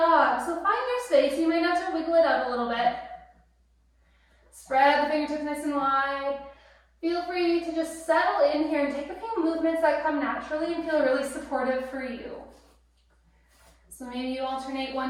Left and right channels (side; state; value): both; identical; correlation 1.00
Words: So find your space. You might have to wiggle it out a little bit. Spread the fingertips nice and wide. Feel free to just settle in here and take a few movements that come naturally and feel really supportive for you. So maybe you alternate